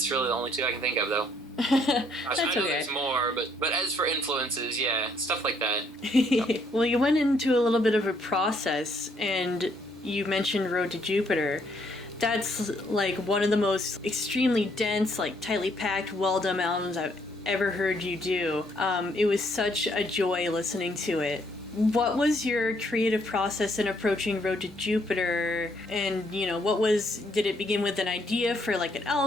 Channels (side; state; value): both; normal; correlation 0.69